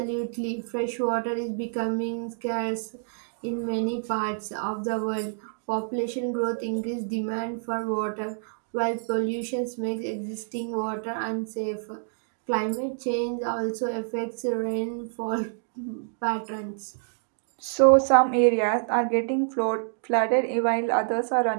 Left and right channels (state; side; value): silent; left; digital silence